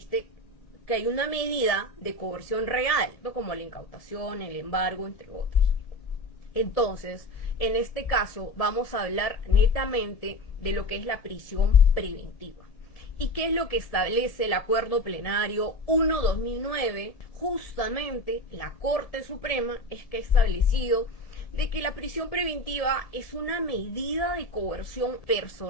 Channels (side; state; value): right; late; 1.7 ms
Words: que hay una medida de coerción real, ¿no? Como la incautación, el embargo, entre otros. Entonces, en este caso vamos a hablar netamente de lo que es la prisión preventiva. ¿Y qué es lo que establece el Acuerdo Plenario 1/2009? Justamente la Corte Suprema es que ha establecido de que la prisión preventiva es una medida de coerción